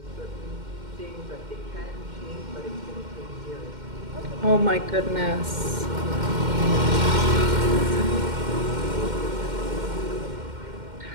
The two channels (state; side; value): late; left; 2.1 ms